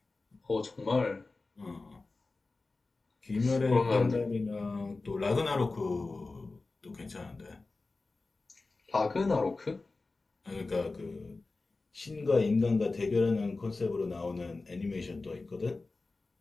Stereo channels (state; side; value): quieter; right; 3.6 dB